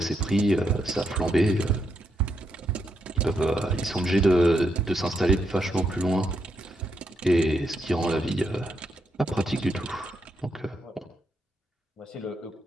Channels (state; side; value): normal; both; correlation 0.80